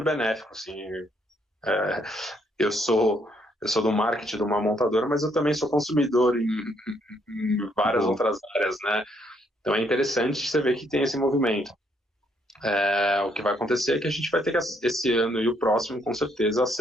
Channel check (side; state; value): both; normal; correlation 0.71